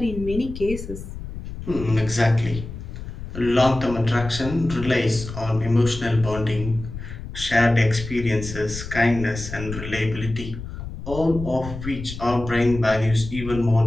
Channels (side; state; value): left; noise; rumble, 10 dB below the sound